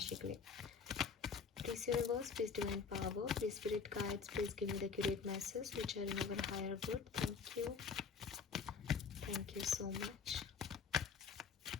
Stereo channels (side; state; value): right; quieter; 5.6 dB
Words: के लिए। Please universe, please divine power, please spirit guides, please give me the accurate message which are in our higher good. Thank you. Thank you so much.